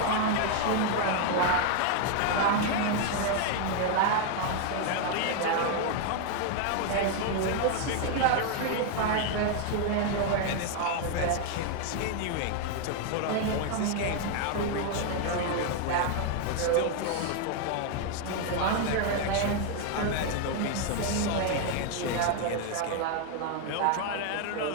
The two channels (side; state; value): both; different; correlation 0.00